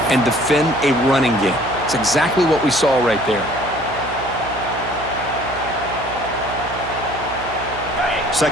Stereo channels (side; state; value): right; noise; hum, 13 dB below the sound